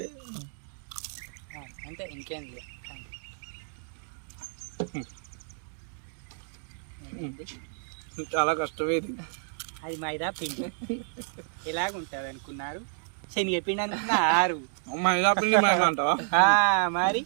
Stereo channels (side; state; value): left; silent; digital silence